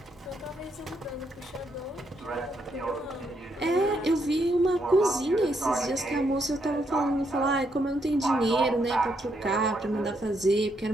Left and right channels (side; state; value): both; normal; correlation 0.77